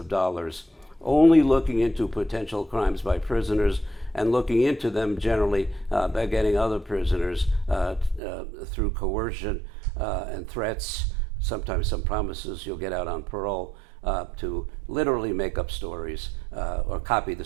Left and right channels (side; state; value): left; drops out; at 8.2 s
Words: dollars only looking into potential crimes by prisoners and looking into them generally by getting other prisoners through coercion and threats, sometimes some promises you'll get out on parole, to literally make up stories or copy the